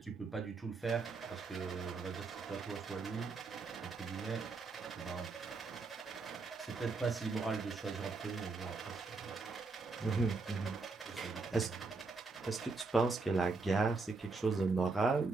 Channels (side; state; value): left; quieter; 4.0 dB